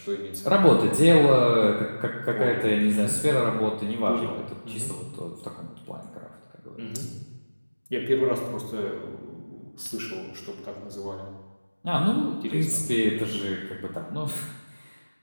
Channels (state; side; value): inverted; both; correlation -1.00